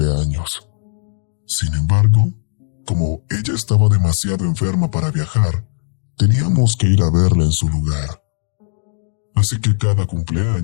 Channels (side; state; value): right; silent; digital silence